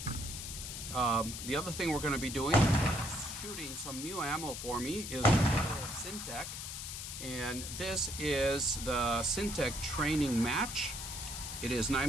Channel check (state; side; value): noise; left; hiss, 7 dB below the sound